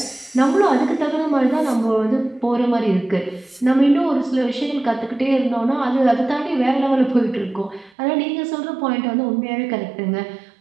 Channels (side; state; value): left; drops out; at 7.9 s